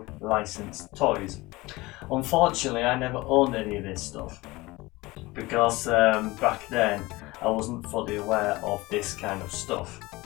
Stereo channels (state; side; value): quieter; right; 21.2 dB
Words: licensed toys. Unfortunately, I never owned any of this stuff because back then I wasn't fully aware of this kind of stuff.